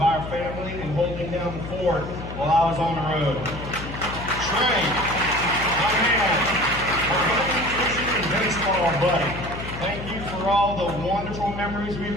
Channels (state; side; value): noise; left; hum, 9 dB below the sound